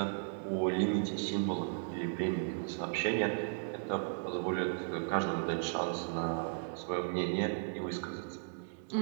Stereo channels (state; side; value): silent; left; digital silence